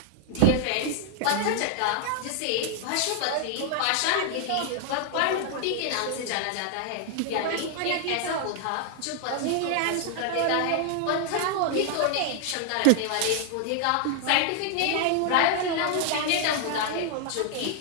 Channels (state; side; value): different; both; correlation 0.00